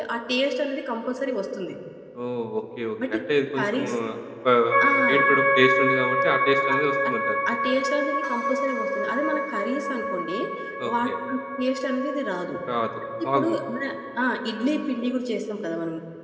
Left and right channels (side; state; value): both; identical; correlation 1.00